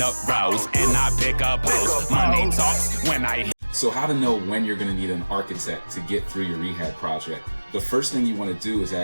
rows and I pick up post. Money talks when I. So how to know when you're going to need an architect to get through your rehab project? The first thing you want to do is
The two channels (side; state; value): both; inverted; correlation -1.00